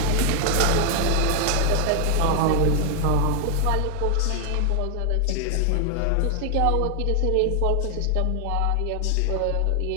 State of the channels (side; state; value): both; different; correlation 0.00